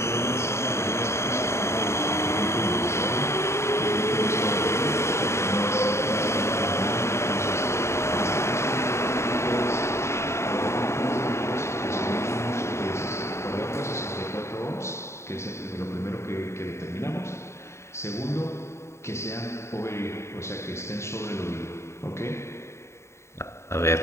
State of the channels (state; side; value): late; right; 0.13 ms